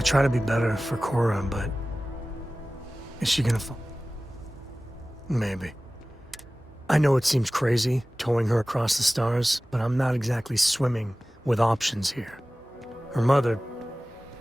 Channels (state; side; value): normal; both; correlation 0.97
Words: try to be better for Cora, but is she gonna fall? Maybe. I know it seems crazy, towing her across the stars, but I'm not exactly swimming with options here. Her mother...